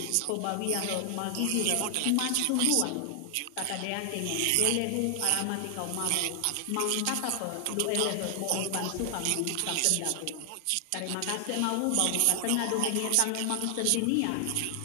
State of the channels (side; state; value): both; different; correlation 0.00